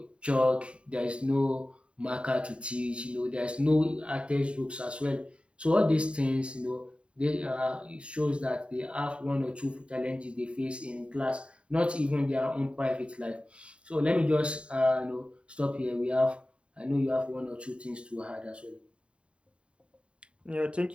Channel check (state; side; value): late; left; 0.057 ms